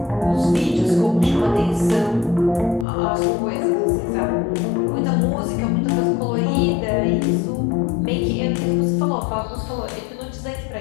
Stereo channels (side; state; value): right; drops out; at 2.9 s